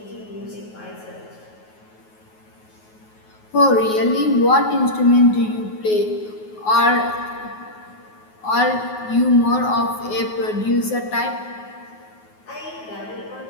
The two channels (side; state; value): right; late; 9.4 ms